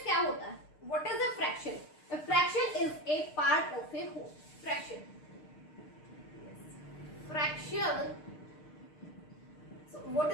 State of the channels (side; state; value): right; late; 6.6 ms